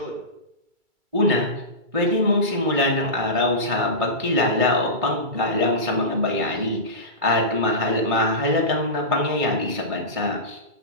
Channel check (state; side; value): late; left; 2.3 ms